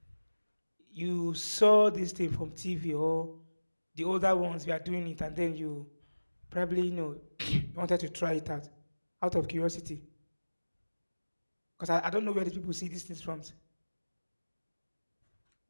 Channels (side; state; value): both; inverted; correlation -1.00